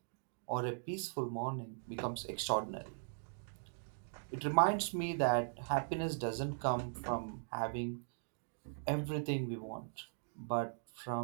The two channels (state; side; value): silent; left; digital silence